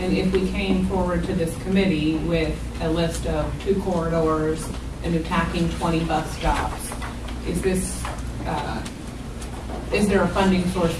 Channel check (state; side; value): identical; both; correlation 1.00